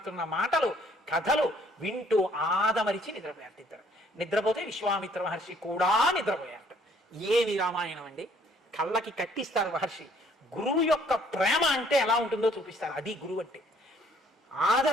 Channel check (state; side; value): normal; both; correlation 0.61